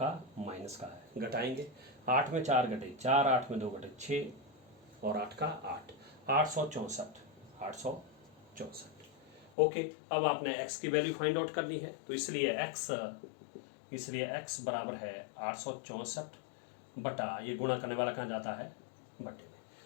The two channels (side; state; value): right; drops out; at 9.5 s